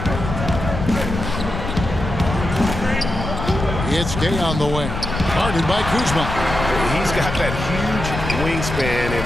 It's Gay on the wing. Guarded by Kuzma. He's got that huge wingspan, and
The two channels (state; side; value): noise; left; rumble, 5 dB below the sound